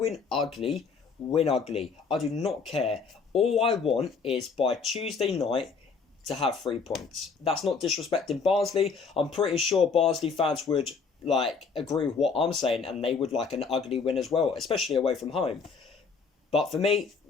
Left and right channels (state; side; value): quieter; right; 5.2 dB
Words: ugly, win ugly. I do not care. All I want is by Tuesday night to have 3 points. That's not disrespecting Barnsley. I'm pretty sure Barnsley fans would agree with what I'm saying, and they would like an ugly win as well, especially away from home. But for me,